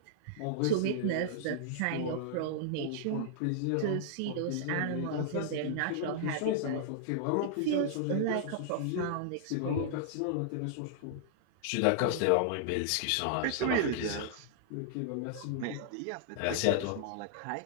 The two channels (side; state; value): both; different; correlation -0.01